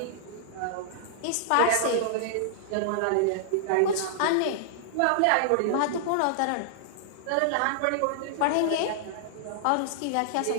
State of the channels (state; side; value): different; both; correlation -0.01